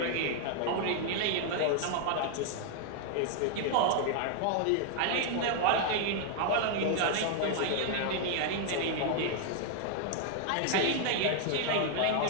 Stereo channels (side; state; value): both; different; correlation 0.00